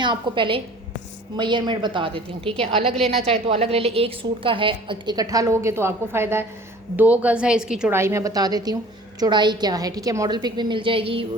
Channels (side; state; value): both; normal; correlation 0.48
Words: आपको पहले मेजरमेंट बता देती हूँ, ठीक है। अलग लेना चाहे तो अलग ले ले, एक सूट का है, इकट्ठा लोगे तो आपको फ़ायदा है। 2 गज़ है इसकी चौड़ाई, मैं बता देती हूँ चौड़ाई क्या है, ठीक है। मॉडल पिक भी मिल जाएगी,